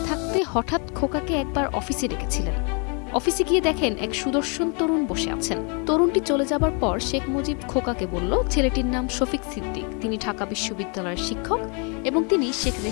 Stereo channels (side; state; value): right; quieter; 35.6 dB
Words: থাকতে হঠাৎ খোকাকে একবার অফিসে ডেকেছিলেন। অফিসে গিয়ে দেখেন এক সুদর্শন তরুণ বসে আছেন। তরুণটি চলে যাবার পর শেখ মুজিব খোকাকে বলল, ছেলেটির নাম শফিক সিদ্দিক, তিনি ঢাকা বিশ্ববিদ্যালয়ের শিক্ষক এবং তিনি শেখ